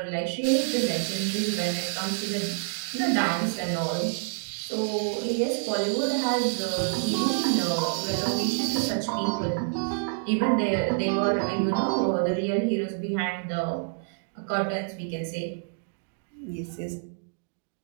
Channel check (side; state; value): left; silent; digital silence